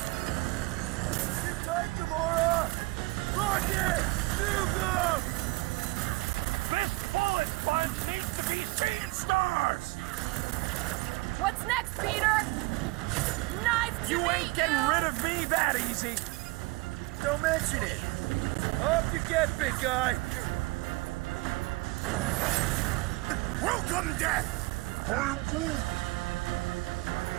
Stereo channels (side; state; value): left; quieter; 23.6 dB